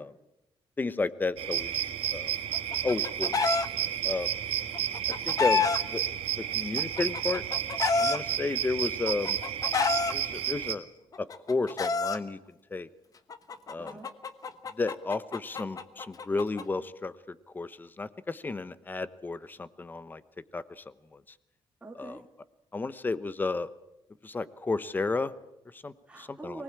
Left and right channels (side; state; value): both; normal; correlation 0.41